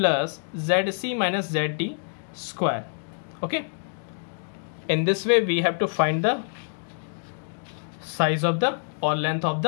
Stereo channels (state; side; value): silent; right; digital silence